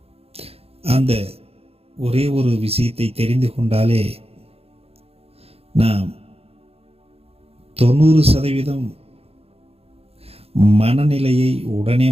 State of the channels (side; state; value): left; late; 0.29 ms